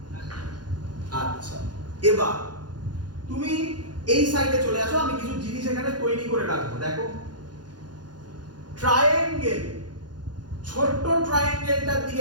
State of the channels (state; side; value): late; left; 0.70 ms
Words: আচ্ছা, এবার তুমি এই সাইডে চলে আসো, আমি কিছু জিনিস এখানে তৈরি করে রাখবো। দেখো, ট্রায়াঙ্গেল, ছোট্ট ট্রায়াঙ্গেলটার